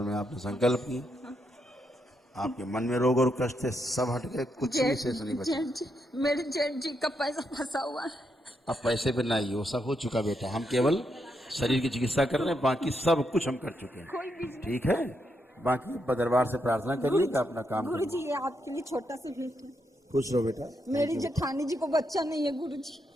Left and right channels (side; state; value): both; normal; correlation 0.81